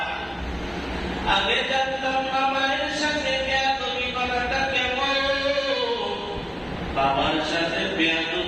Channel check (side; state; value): both; identical; correlation 1.00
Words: আগে জানতাম না মায়ের সাথে বেয়াদবি করাটা কেমন, বাবার সাথে